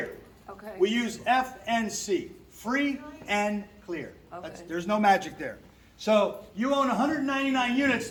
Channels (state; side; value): identical; both; correlation 1.00